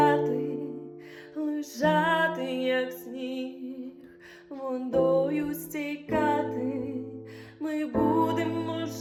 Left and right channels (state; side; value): identical; both; correlation 1.00